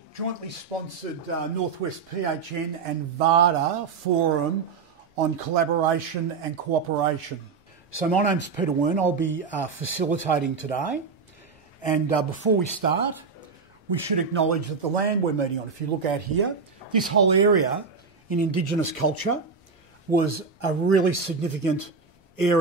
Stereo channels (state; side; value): quieter; left; 5.1 dB